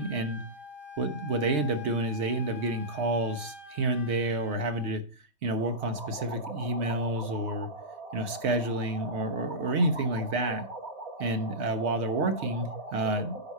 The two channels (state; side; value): late; left; 3.2 ms